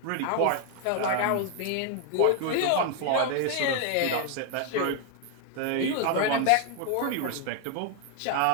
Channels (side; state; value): both; different; correlation 0.00